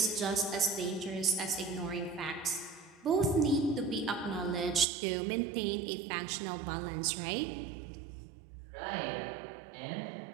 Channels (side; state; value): left; drops out; at 4.9 s